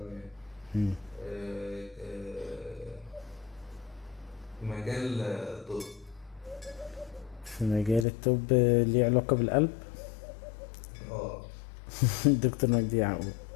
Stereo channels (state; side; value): drops out; right; at 8.1 s